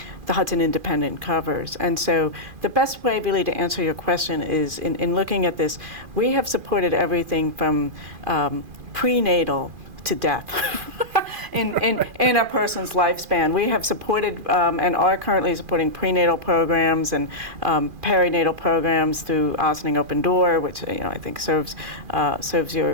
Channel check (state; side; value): late; left; 2.4 ms